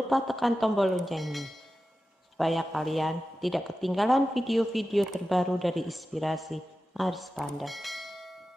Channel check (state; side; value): normal; both; correlation 0.93